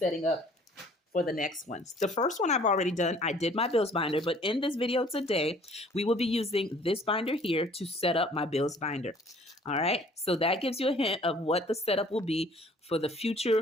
up for the next ones. The first one I've already done. I did my bills binder, but in this video today, we will be using this binder here to set up my bills binder. All right, so that gives you a hint of what the setup will be for the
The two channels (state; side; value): normal; both; correlation 0.55